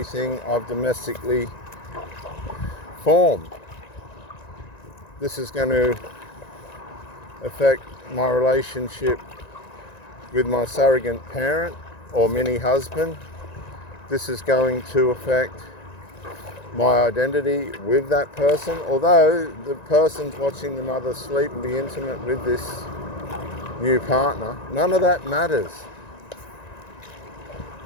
I've domestically formed. This is going to affect my relationship with my surrogate parent or mini husband. This is going to affect my identity with that person, although the person's watching the mother sleep and be intimate with this new partner. None of that matters,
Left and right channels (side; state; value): right; late; 1.9 ms